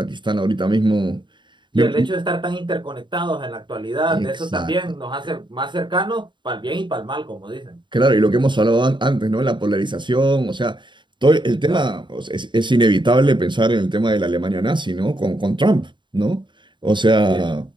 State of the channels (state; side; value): late; left; 0.23 ms